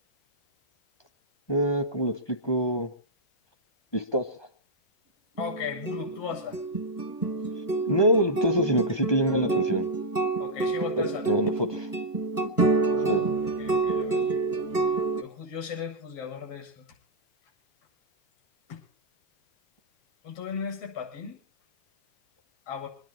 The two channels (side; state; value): right; late; 1.2 ms